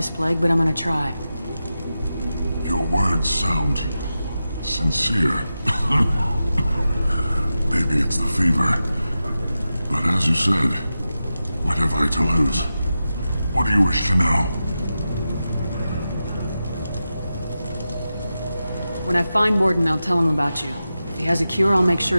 plague, but I'm gonna try. Your words sound sincere. Maybe it's the fever. But as you said, what have I to lose? What do you wish to know? When I find Mordin, I'll tell him about you. If he has a cure, I'll make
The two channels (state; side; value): inverted; both; correlation -0.91